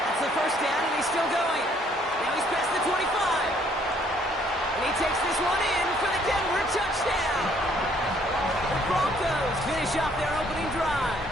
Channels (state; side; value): normal; both; correlation 0.64